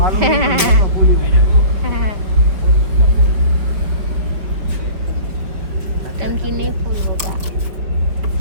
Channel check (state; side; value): late; left; 5.6 ms